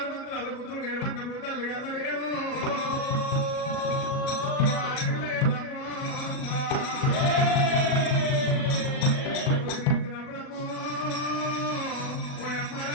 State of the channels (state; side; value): late; right; 38 ms